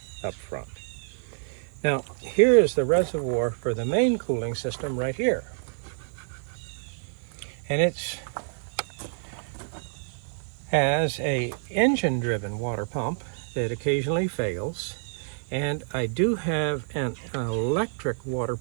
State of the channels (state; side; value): silent; left; digital silence